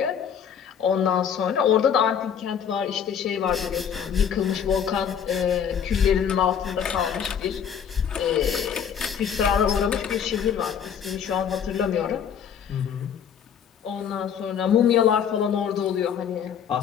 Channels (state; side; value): quieter; right; 8.0 dB